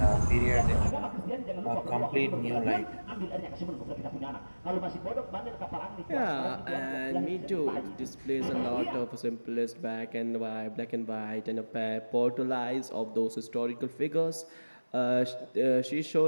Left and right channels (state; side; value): inverted; both; correlation -1.00